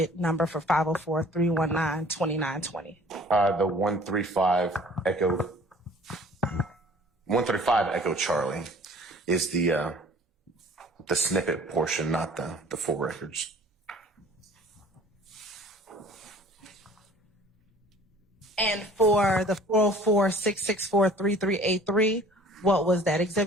number for 504-319-2920? The 135 Echo Charlie is the snippet portion, not the full records. And for the 404-664-3383, what was that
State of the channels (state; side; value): normal; both; correlation 0.50